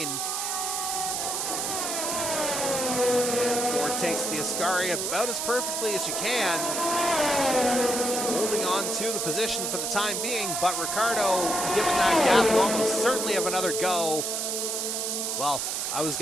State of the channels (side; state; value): right; noise; hiss, 1 dB below the sound